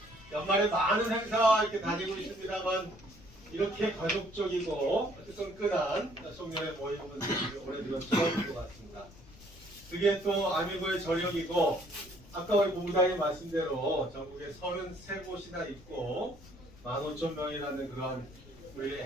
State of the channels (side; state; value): left; noise; rumble, 21 dB below the sound